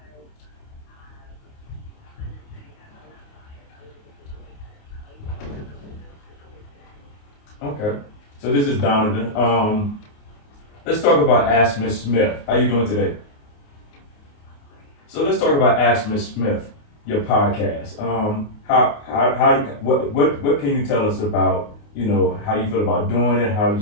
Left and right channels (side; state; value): right; late; 28 ms